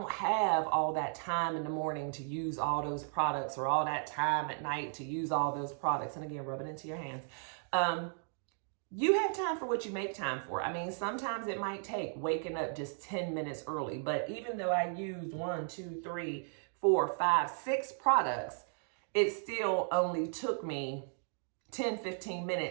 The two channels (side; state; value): left; silent; 54 dB below the other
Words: have all that time in the morning to use all those products, or all that time at night to use all those products, and again, rub it into your hands. You have time for what you make time for. I mean, sometimes it might take waking up just 10 minutes early, but even though I used 1, 2, 3, 4, 5, 6 products, it still only took me 10-15